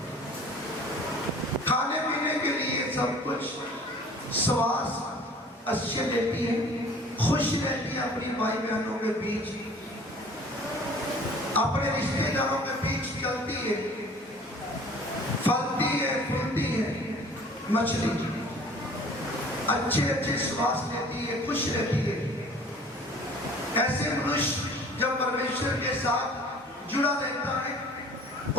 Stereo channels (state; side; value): normal; both; correlation 0.49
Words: खाने पीने के लिए सब कुछ, श्वास अच्छे लेती है, खुश रहती है अपनी भाई बहनों के बीच, अपने रिश्तेदारों के बीच चलती है, फलती है, फूलती है मछली, अच्छे श्वास लेती है, खुश रहती है। ऐसे मनुष्य जब परमेश्वर के साथ जुड़ा रहता है